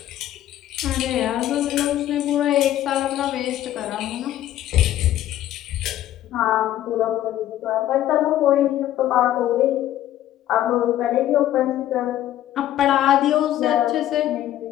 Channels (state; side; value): quieter; right; 12.9 dB